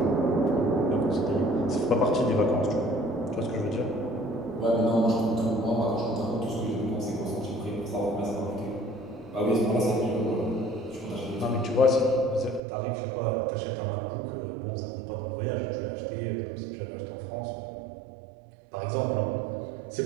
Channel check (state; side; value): drops out; left; at 12.6 s